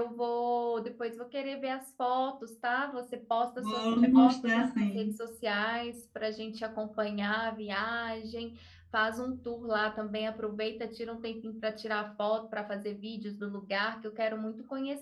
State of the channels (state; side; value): identical; both; correlation 1.00